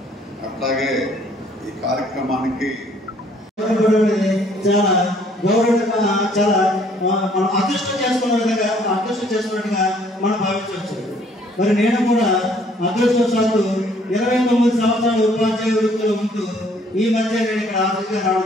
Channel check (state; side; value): normal; both; correlation 0.61